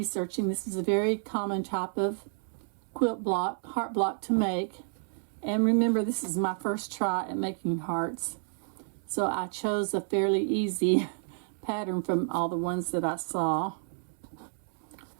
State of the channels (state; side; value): silent; left; 58 dB below the other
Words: this is a very common type of quilt block, heart block to make. And remember, this is my first try at making hearts. So I chose a fairly easy pattern from all the ones that I saw.